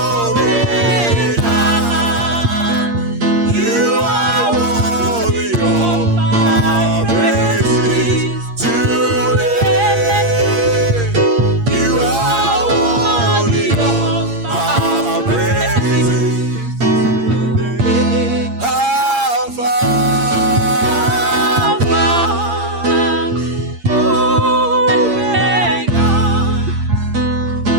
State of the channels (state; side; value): late; left; 8.6 ms